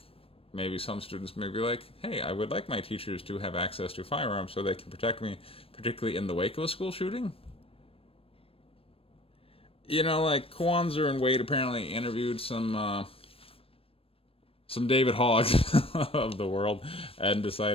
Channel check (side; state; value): right; late; 0.28 ms